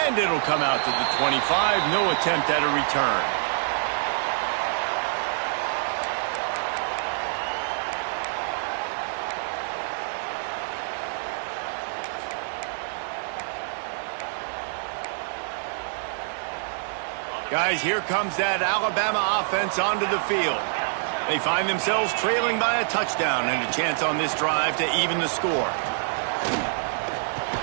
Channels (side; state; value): left; silent; digital silence